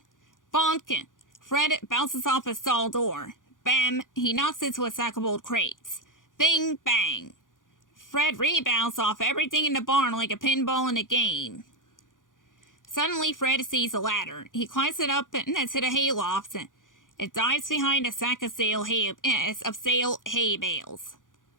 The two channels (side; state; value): right; late; 0.88 ms